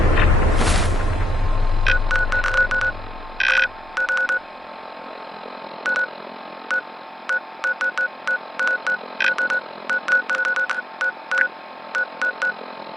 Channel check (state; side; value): normal; both; correlation 0.84